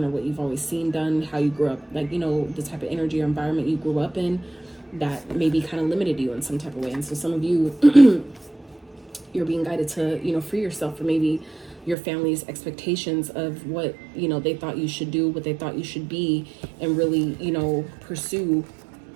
or what you've always seen done, how you grew up, like, you know, the type of energy or environment you grew up in that maybe kind of limited you in some type of way. And so some of you, you're being guided to, you know, free yourself from maybe your family's expectations of what, you know, they thought you should do, what they thought you should be, and really, you know, pursue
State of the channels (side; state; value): left; drops out; at 12.0 s